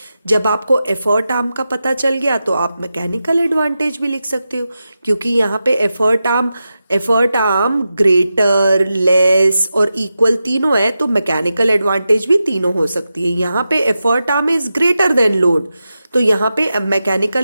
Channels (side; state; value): both; inverted; correlation -0.91